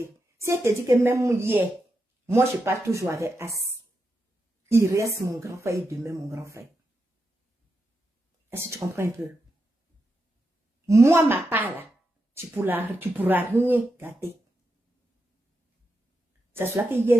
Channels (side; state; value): both; normal; correlation 0.87